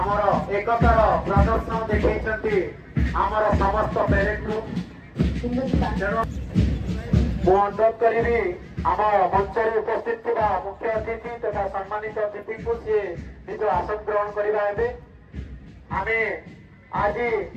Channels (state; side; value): identical; both; correlation 1.00